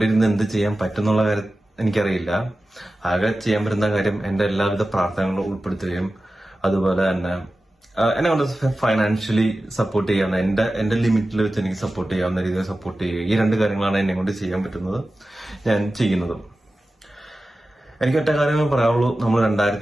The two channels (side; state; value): both; normal; correlation 0.94